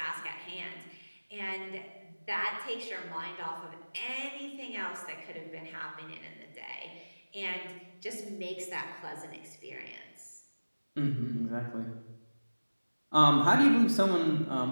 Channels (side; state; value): both; inverted; correlation -1.00